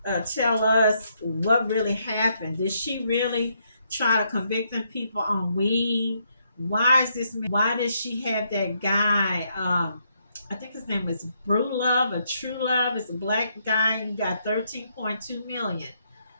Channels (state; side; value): inverted; both; correlation -0.75